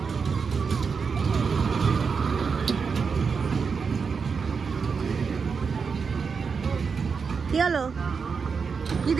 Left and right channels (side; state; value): left; quieter; 5.5 dB